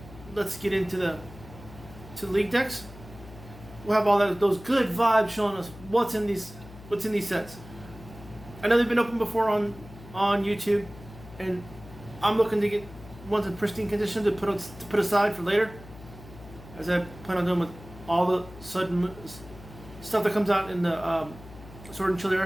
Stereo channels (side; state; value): left; noise; hum, 18 dB below the sound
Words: let's get into the league decks. We'll have all those good vibes showing us what's in these sets. I know they've been opened before on YouTube, and I'm looking to get ones in pristine condition to put aside for later, as I plan on doing with all the sudden stuff that comes out in the Sword and Shield